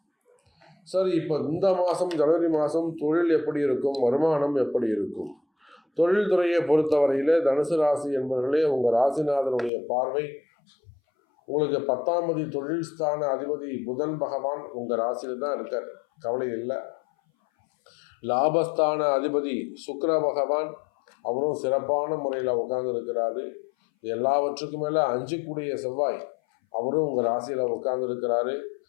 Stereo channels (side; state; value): right; drops out; at 9.7 s